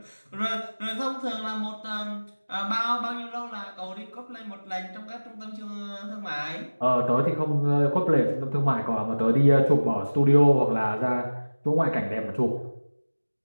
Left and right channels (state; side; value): inverted; both; correlation -1.00